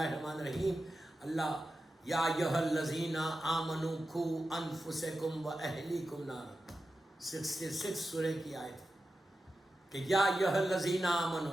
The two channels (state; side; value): normal; both; correlation 0.92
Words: الرحیم، اللہ یا ایھا الذین آمنوا قوا انفسکم واہلیکم نارا، 66 سورہ کی آیت کہ یا ایھا الذین